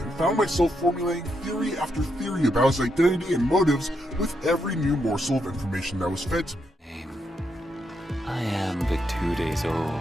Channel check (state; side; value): normal; both; correlation 0.80